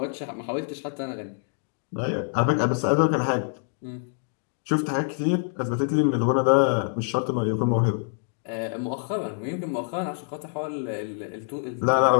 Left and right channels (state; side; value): silent; right; digital silence